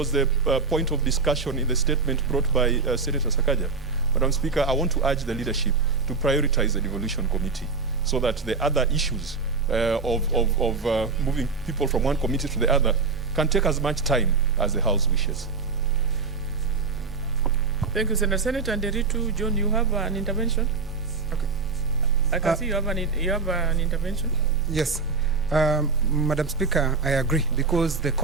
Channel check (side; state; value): left; quieter; 4.5 dB